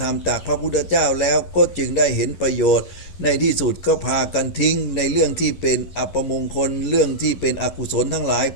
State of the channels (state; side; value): late; right; 11 ms